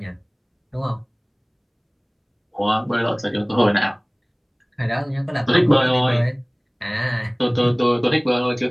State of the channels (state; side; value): identical; both; correlation 1.00